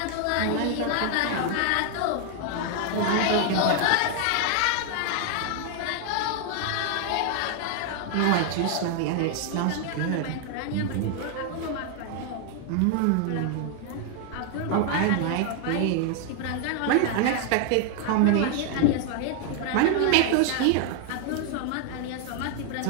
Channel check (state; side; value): different; both; correlation 0.00